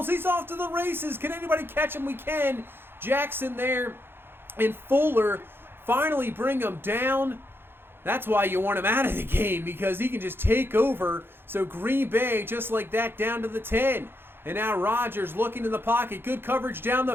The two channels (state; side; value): late; left; 0.10 ms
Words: He's off to the races. Can anybody catch him? We can. Jackson there and Fuller finally bring him down. That's why you want him out of the game, because he can just take over. So Green Bay, just like that, down to the 10. And now Rodgers looking in the pocket. Good coverage down